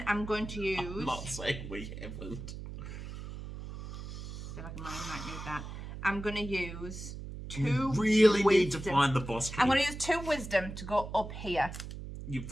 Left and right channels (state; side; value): noise; right; hum, 9 dB below the sound